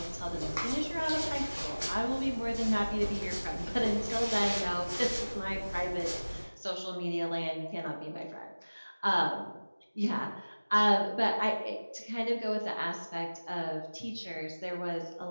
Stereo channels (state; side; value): inverted; both; correlation -1.00